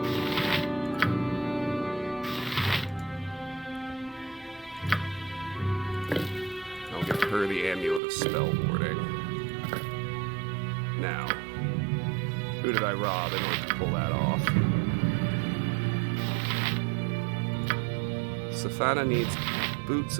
I'll give her the Amulet of Spell Warding. Now, who did I rob in order to pull that off? Stefana needs boots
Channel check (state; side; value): drops out; left; at 8.0 s